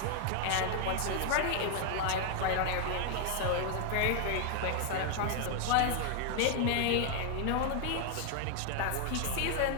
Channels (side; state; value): both; different; correlation 0.00